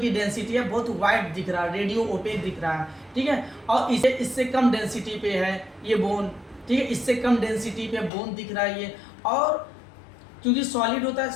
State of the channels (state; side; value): drops out; right; at 8.1 s